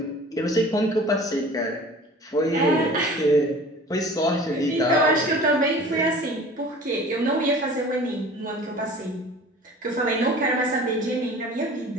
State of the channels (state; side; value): normal; both; correlation 0.44